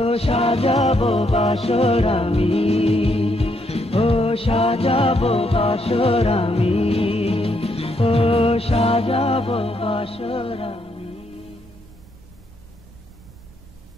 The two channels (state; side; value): normal; both; correlation 0.75